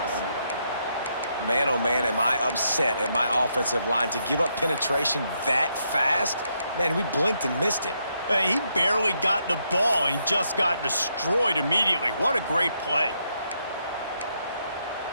Man, oh man, am I upset at my offensive line to give up penetration that fast? Man, we blinked and missed it. He barely got the ball. He just got destroyed immediately. What a great play.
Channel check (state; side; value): inverted; both; correlation -0.78